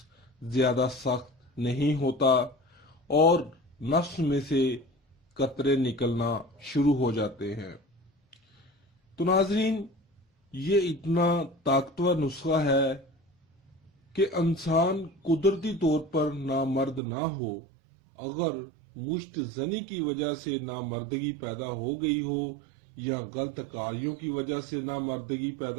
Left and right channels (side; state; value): left; drops out; at 17.0 s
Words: زیادہ سخت نہیں ہوتا اور نفس میں سے قطرے نکلنا شروع ہو جاتے ہیں۔ تو ناظرین، یہ اتنا طاقتور نسخہ ہے کہ انسان قدرتی طور پر نامرد نہ ہو، اگر مشت زنی کی وجہ سے نامردگی پیدا ہو گئی ہو یا غلط کاریوں کی وجہ سے نامردگی